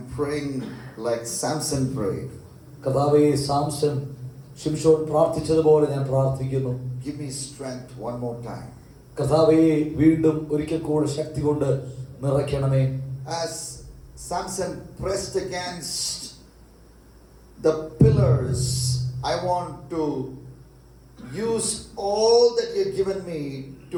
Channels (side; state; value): both; identical; correlation 1.00